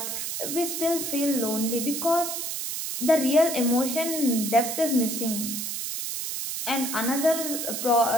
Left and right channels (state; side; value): noise; right; hiss, 4 dB below the sound